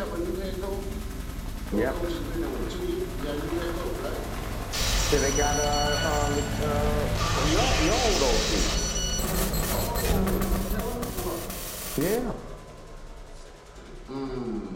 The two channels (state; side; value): identical; both; correlation 1.00